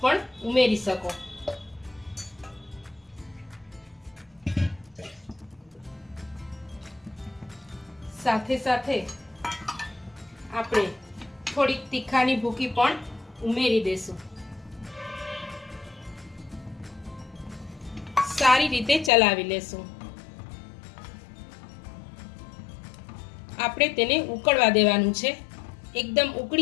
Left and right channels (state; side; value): drops out; right; at 19.1 s